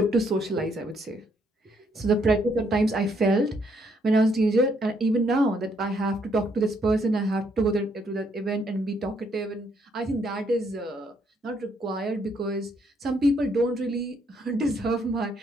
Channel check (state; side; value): normal; both; correlation 0.71